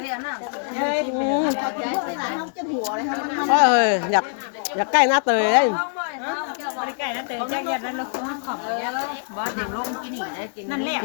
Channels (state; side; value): silent; right; digital silence